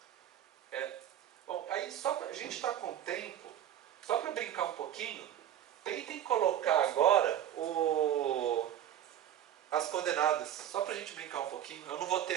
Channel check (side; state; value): left; quieter; 11.0 dB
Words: Bom, aí a gente está com tempo, só para brincar um pouquinho, tentem colocar agora as coordenadas, só para a gente brincar um pouquinho. Eu não vou ter